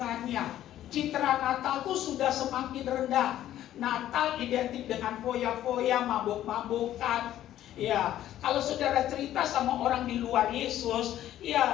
Citra Natal itu sudah semakin rendah. Natal identik dengan foya-foya, mabuk-mabukan. Ya, kalau saudara cerita sama orang di luar Yesus,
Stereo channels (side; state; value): right; quieter; 12.5 dB